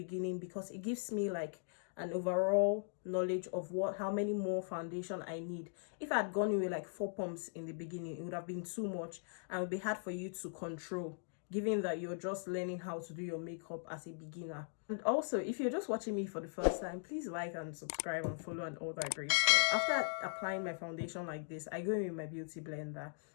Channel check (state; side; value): silent; right; digital silence